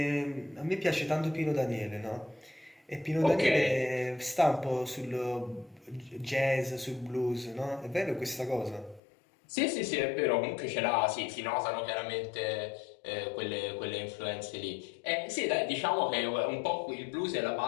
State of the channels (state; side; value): drops out; right; at 9.0 s